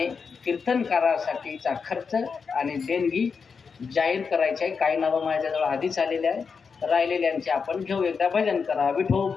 कीर्तनकारासाठीचा खर्च आणि देणगी जाहीर करायचे आहे. काही नावं माझ्याजवळ आधीच आलेले आहे, राहिलेल्यांचे आपण घेऊ. एकदा भजन करा.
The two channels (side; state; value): right; quieter; 5.6 dB